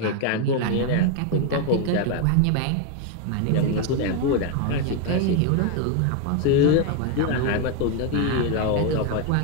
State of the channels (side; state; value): both; different; correlation 0.01